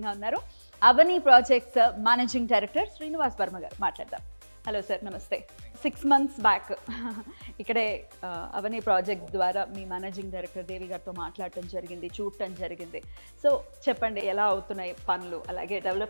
ఉన్నారు Avani projects managing director Srinivas Varma గారు. మాట్లాడదాం. హలో సార్, నమస్తే. 6 months బ్యాక్ ఇక్కడే అవని ప్రాజెక్ట్ ద్వారా మీ మేనేజింగ్ డైరెక్టర్ దేవి గారితో మాట్లాడటం జరిగింది, చూడటం జరిగింది. సో చెప్పండి, ఎలా అవుతున్నాయి పనులు, అలాగే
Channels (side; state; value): both; inverted; correlation -1.00